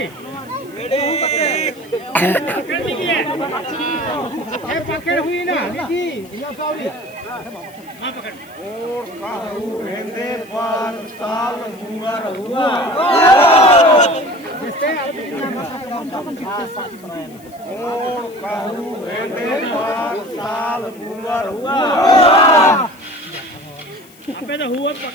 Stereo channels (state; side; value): noise; left; hiss, 25 dB below the sound